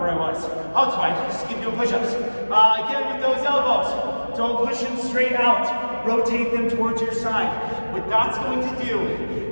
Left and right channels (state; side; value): inverted; both; correlation -1.00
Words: I was. Oh, it's fine. Just keep doing push-ups. Again, with those elbows, don't push them straight out. Rotate them towards your side. What that's going to do